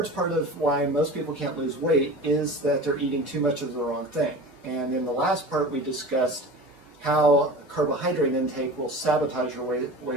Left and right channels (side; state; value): both; normal; correlation 0.35